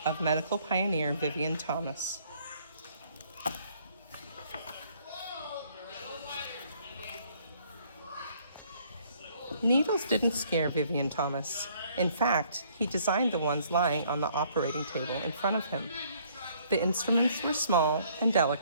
of medical pioneer Vivien Thomas. Needles didn't scare Vivien Thomas. In fact, he designed the ones lying on the operating table in front of him. The instruments were small and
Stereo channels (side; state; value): both; inverted; correlation -0.62